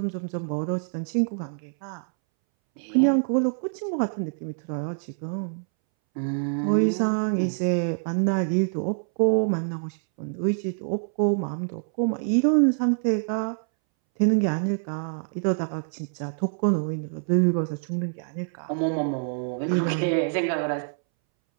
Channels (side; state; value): left; silent; 61 dB below the other